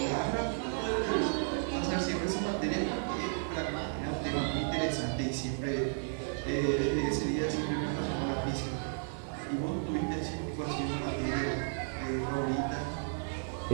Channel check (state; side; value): silent; left; 56 dB below the other